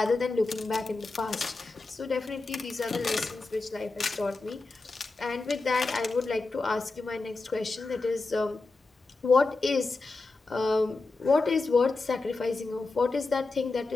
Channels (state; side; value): quieter; right; 3.6 dB